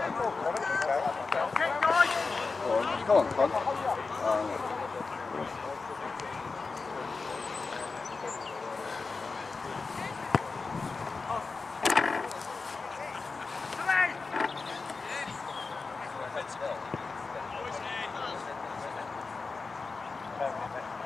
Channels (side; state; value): right; quieter; 4.2 dB